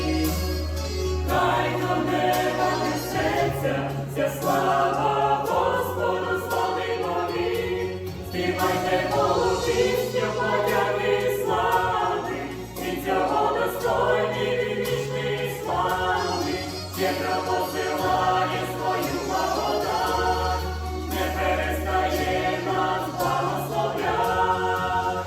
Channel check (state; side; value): identical; both; correlation 1.00